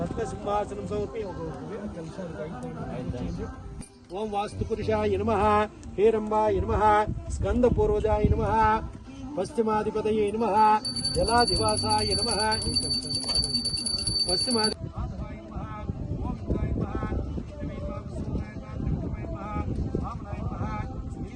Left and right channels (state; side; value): identical; both; correlation 1.00